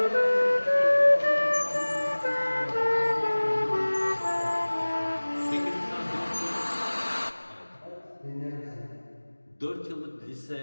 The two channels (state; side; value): inverted; both; correlation -1.00